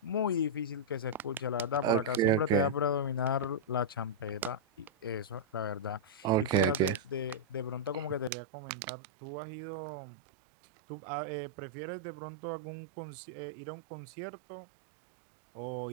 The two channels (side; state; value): left; drops out; at 8.3 s